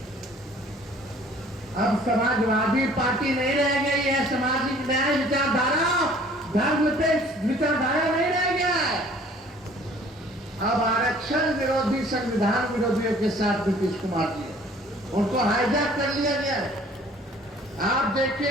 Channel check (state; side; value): normal; both; correlation 0.54